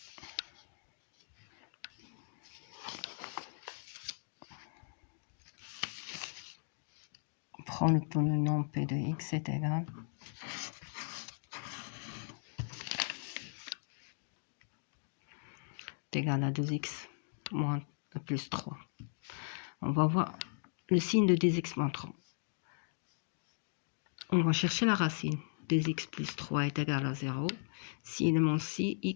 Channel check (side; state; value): right; silent; digital silence